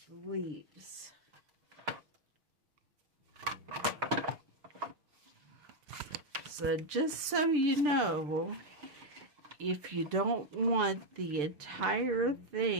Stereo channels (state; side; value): late; left; 6.7 ms